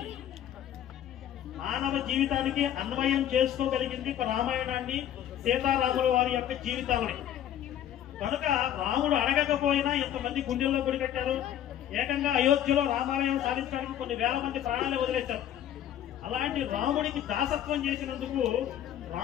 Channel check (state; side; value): quieter; right; 10.9 dB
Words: జీవితానికి అన్వయం చేసుకోగలిగింది రామాయణాన్ని, సీతారాముల వారి యొక్క జీవితాలని. కనుక రాముడు అడగకపోయినా ఎంతమంది గుండెల్లో గుడి కట్టారు. ఏకంగా అయోధ్యలో రామాలయం సాధించడానికి కొన్ని వేల మంది ప్రాణాలు వదిలేశారు. అలాంటి రాముడికి దాసత్వం చేసినందుకు,